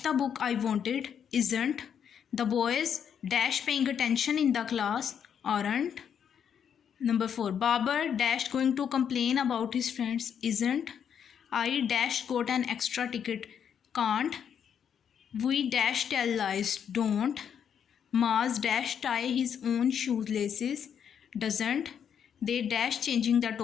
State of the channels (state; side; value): quieter; right; 8.1 dB